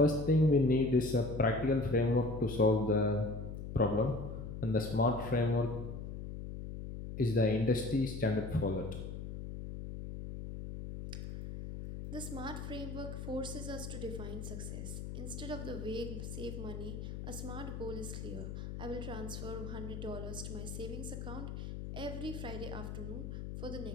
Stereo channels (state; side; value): noise; left; hum, 7 dB below the sound